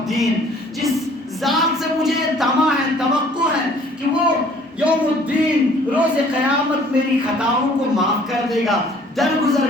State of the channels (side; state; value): both; normal; correlation 0.56